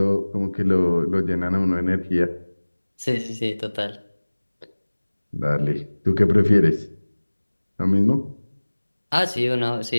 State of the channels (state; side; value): inverted; both; correlation -1.00